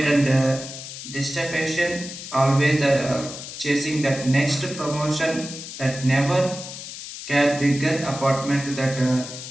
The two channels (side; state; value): left; noise; hiss, 11 dB below the sound